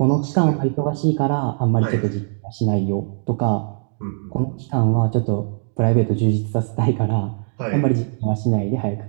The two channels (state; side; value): silent; left; digital silence